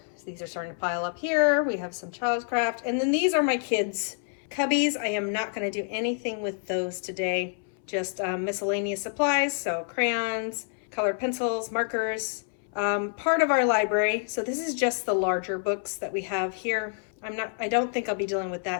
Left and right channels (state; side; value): silent; right; 60 dB below the other